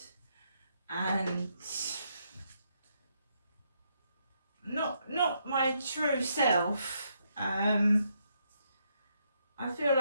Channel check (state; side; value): inverted; both; correlation -0.76